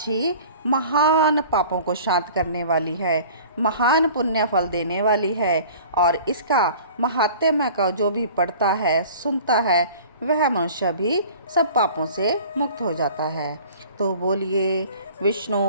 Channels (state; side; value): inverted; both; correlation -0.45